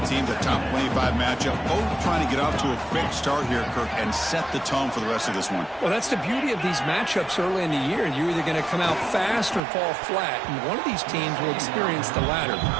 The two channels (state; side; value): drops out; left; at 9.6 s